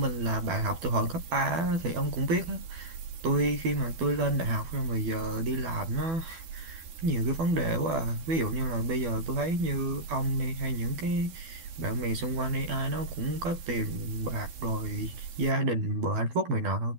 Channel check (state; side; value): late; left; 12 ms